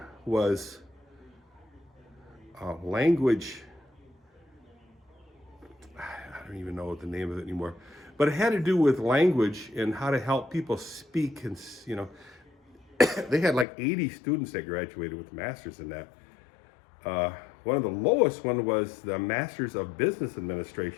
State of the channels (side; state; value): right; drops out; at 13.7 s